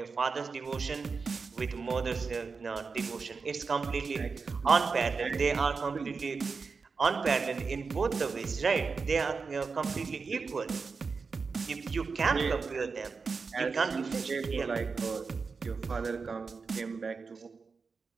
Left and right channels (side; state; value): left; quieter; 4.8 dB